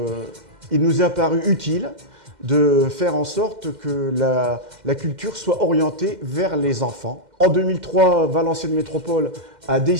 il nous est apparu utile de faire en sorte que la culture soit orientée vers les enfants. En 2003, Valenciennes Métropole a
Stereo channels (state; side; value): late; left; 2.1 ms